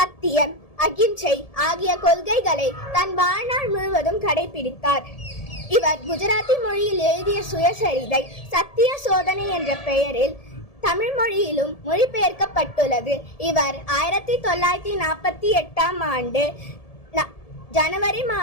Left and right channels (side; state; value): right; late; 1.7 ms